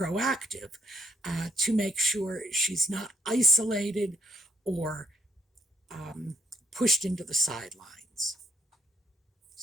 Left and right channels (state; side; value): normal; both; correlation 0.68